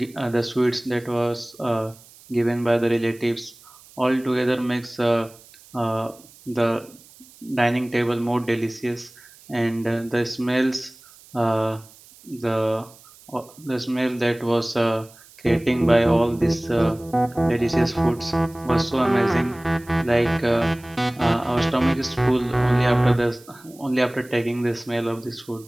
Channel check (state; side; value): noise; right; hiss, 24 dB below the sound